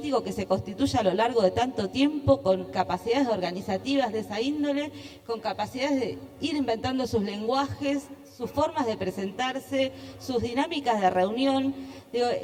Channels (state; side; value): identical; both; correlation 1.00